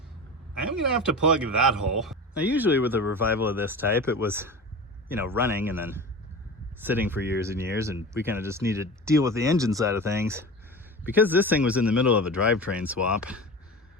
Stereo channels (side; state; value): both; normal; correlation 0.31